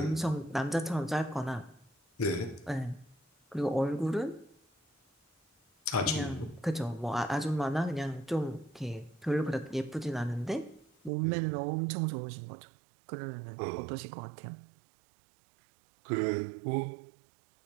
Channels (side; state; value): left; drops out; at 11.1 s